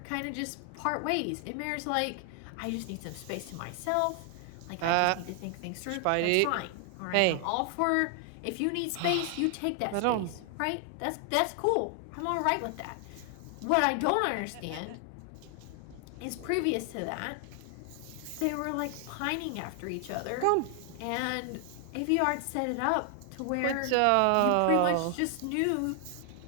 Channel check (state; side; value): different; both; correlation 0.00